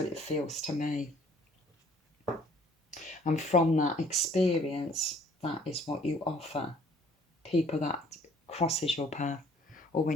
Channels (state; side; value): normal; both; correlation 0.57